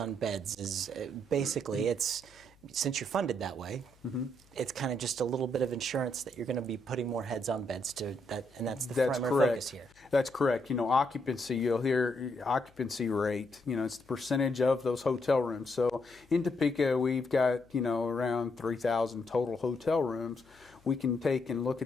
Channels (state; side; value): noise; left; hum, 30 dB below the sound